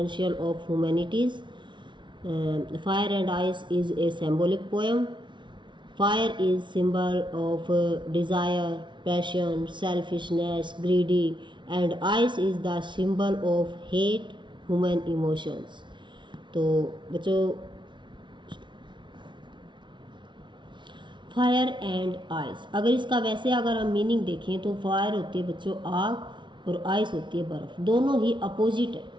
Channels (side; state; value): left; late; 0.23 ms